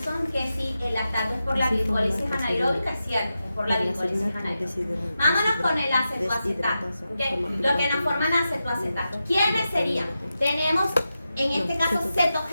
que sí, el lactato es por la glicólisis anaeróbica, es cierto, es por la glicólisis anaeróbica. Vámonos con el acetoacetato, ¿okay? Lo que nos forman acetoacetato. ¿Quiénes serían? Tenemos, en este caso,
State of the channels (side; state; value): both; inverted; correlation -0.90